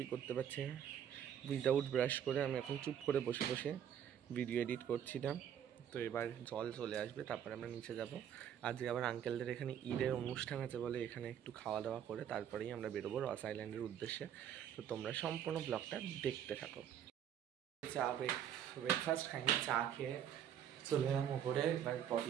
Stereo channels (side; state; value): left; quieter; 9.5 dB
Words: করতে পারছি না। উইদাউট ব্রাশ করে আমি এখন চুপ করে বসে বসে ভিডিও এডিট করছিলাম। তো এবার জল চলে আসবে, তারপরে আমরা নিচে যাব। আজকে আবার আঙ্কেলদের এখানে ঈদের অনুষ্ঠান আছে বলে এখানে একটু খাওয়া দাওয়া করে তারপরেই আমরা বেরোবো রস আইল্যান্ডের উদ্দেশ্যে। তো তোমরা সম্পূর্ণ ব্লগটা দেখতে থাকো। চা ব্রেকফাস্ট খাইনি, চা খেয়ে চলে এলাম ওপরে। এবার